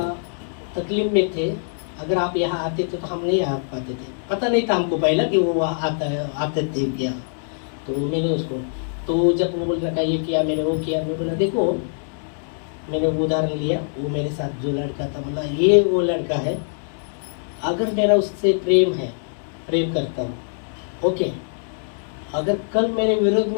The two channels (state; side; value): silent; right; digital silence